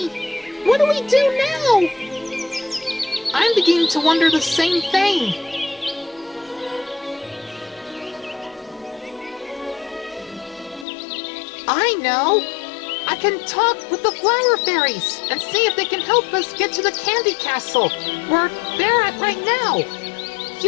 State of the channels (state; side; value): drops out; right; at 10.9 s